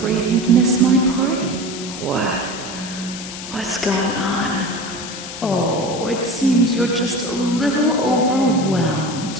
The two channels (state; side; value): noise; left; hiss, 10 dB below the sound